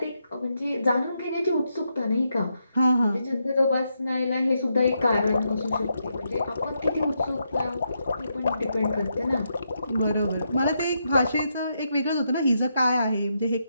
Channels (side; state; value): both; inverted; correlation -0.82